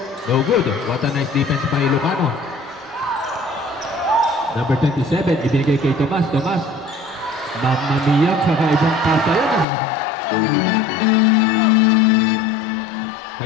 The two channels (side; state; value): right; drops out; at 9.7 s